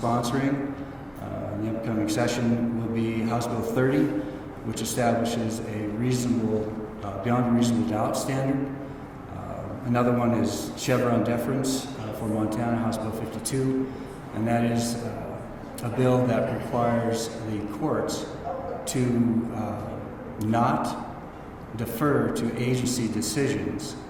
in the upcoming session will be House Bill 30, which establishes a reasonable, beyond a reasonable doubt standard. Another one is Chevron deference for Montana, House Bill 52, and that is a bill that requires the courts to not defer to agency decisions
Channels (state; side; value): identical; both; correlation 1.00